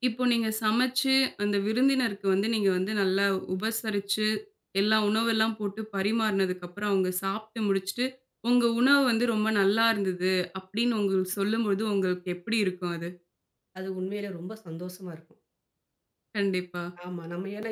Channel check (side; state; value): both; identical; correlation 1.00